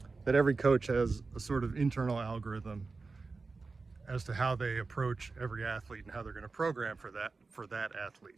that every coach has a sort of internal algorithm as to how they approach every athlete and how they're going to program for that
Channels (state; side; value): quieter; left; 4.1 dB